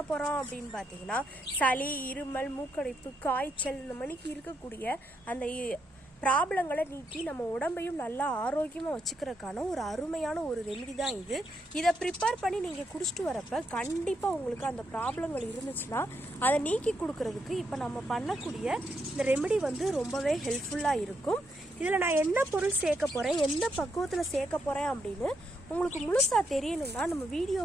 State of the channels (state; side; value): normal; both; correlation 0.79